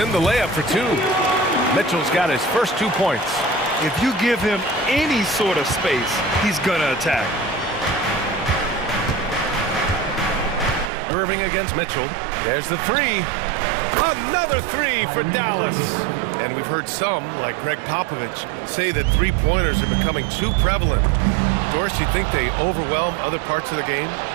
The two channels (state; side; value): drops out; left; at 10.9 s